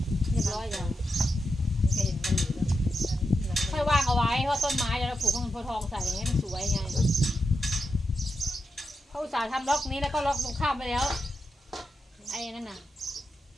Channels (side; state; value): both; normal; correlation 0.87